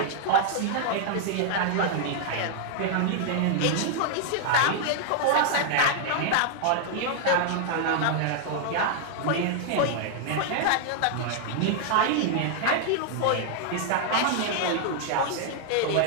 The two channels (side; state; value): both; different; correlation 0.00